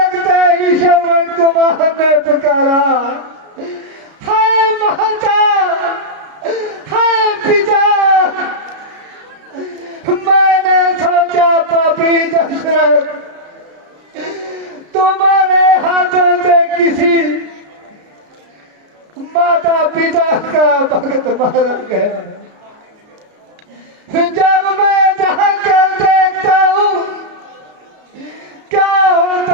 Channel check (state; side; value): late; left; 33 ms